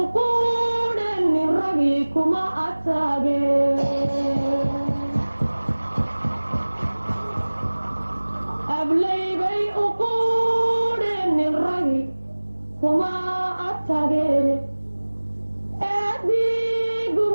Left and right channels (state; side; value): inverted; both; correlation -1.00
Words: ragii kuma ataageen ablaybay uquudhenin ragii kuma atageene eedii